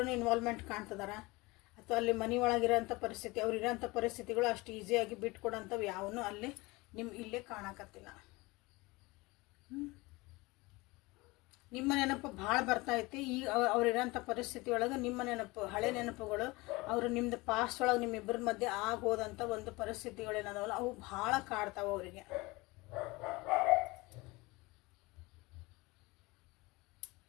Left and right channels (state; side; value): quieter; right; 23.2 dB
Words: ಇನ್ವಾಲ್ವ್ಮೆಂಟ್ ಕಾಣ್ತಿದಾರ, ಅಥವಾ ಅಲ್ಲಿ ಮನೆ ಒಳಗಿರೋಂಥ ಪರಿಸ್ಥಿತಿ, ಅವ್ರು ಇರೋಂಥ ಪರಿಸ್ಥಿತಿಗಳು ಅಷ್ಟು ಈಸಿಯಾಗಿ ಬಿಟ್ಕೊಡೋಂಥವು ಯಾವನು ಅಲ್ಲಿ ಇಲ್ಲೇ ಕಾಣಕತ್ತಿಲ್ಲ. ನಿಮ್ಮ ನೆನಪು ಭಾಳ ಬರ್ತೈತಿ. ಈಗ ಅವ್ರಿರೋಂಥ ಪರಿಸ್ಥಿತಿ ಒಳಗೆ ನಿಮ್ಮ ನೆನಪು, ಹಳೆ ನೆನಪುಗಳು, ಅವರು ನಿಮ್ಮದು ಪಾಸ್ಟ್ ಒಳಗೆ ನಿಮ್ಮಿಬ್ಬರ ಮಧ್ಯೆ ಆಗೋದಂಥ ಒಂದು ಪರಿಸ್ಥಿತಿಗಳೇನದಾವಲ್ಲ ಅವು ಭಾಳ ಕಾಡ್ತಾವೆ ಅವರಿಗೆ.